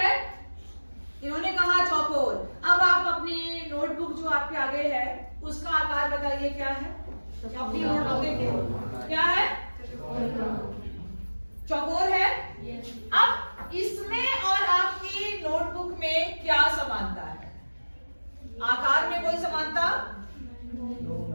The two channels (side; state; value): both; inverted; correlation -1.00